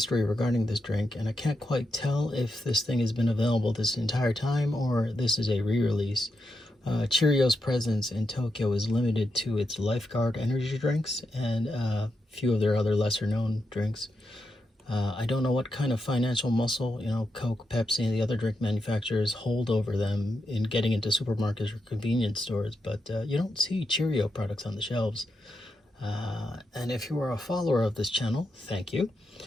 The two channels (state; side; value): normal; both; correlation 0.86